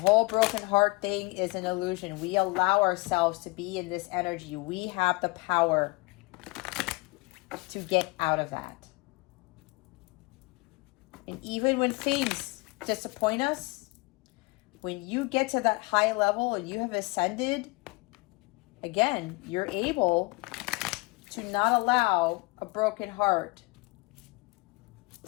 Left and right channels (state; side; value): quieter; right; 25.0 dB